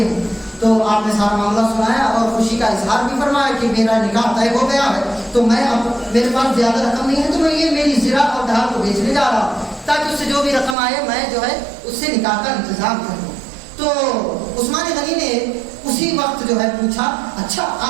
ہیں؟ تو آپ نے سارا معاملہ سنایا اور خوشی کا اظہار بھی فرمایا کہ میرا نکاح طے ہو گیا ہے، تو میں اب میرے پاس زیادہ رقم نہیں ہے تو میں یہ میری زرہ اور ڈھال کو بیچنے جا رہا ہوں تاکہ اس سے جو بھی رقم آئے میں جو ہے اس سے نکاح کا انتظام کروں۔ تو عثمان غنی نے اسی وقت جو ہے پوچھا اچھا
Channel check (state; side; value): drops out; left; at 10.8 s